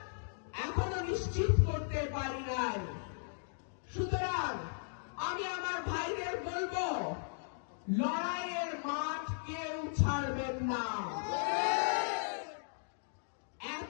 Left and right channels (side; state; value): right; silent; digital silence